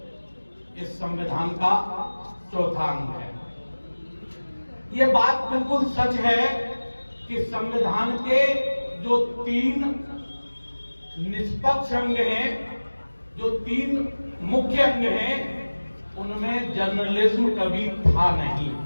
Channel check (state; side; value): inverted; both; correlation -1.00